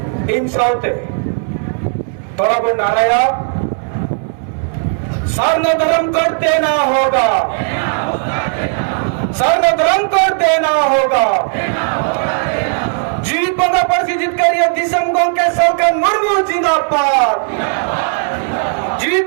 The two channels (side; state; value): left; silent; 56 dB below the other